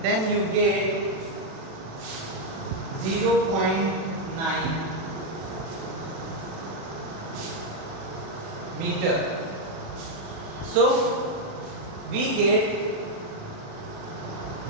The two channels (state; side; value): late; left; 37 ms